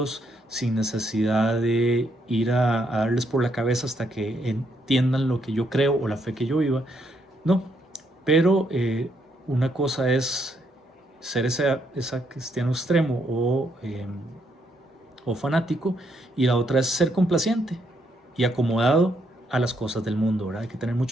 sin necesidad de ir a darles por la cabeza hasta que entiendan lo que yo creo o la fe que yo viva. No, pero una cosa es ser ese cristiano extremo o fanático, y la otra es ser complaciente y acomodado a las cosas del mundo, ¿verdad? Hay que tener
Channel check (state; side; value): normal; both; correlation 0.75